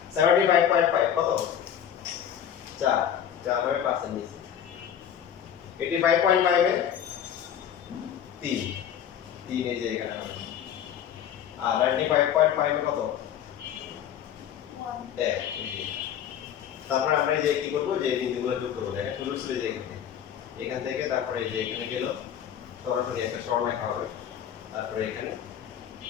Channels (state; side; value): quieter; right; 9.5 dB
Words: 75.5 কত 4 4 হবে 5 এর নিচে 85.5 এ 3 3 এই যে এখানে হবে আর 95.5 এ কত 1 এক তারপরে আমরা এই যে কি করব যে বিন্দুগুলো যোগ করব দেখেন শুরু ছিল যে এখান থেকে তারপরে এই যে এখানে গেল সরাসরি একটা সরলরেখা হবে তারপরে এখানে